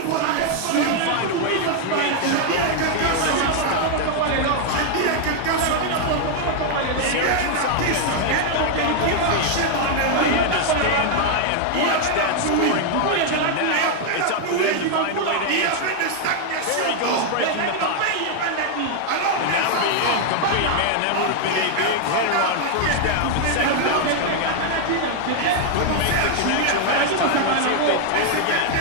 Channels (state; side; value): different; both; correlation 0.00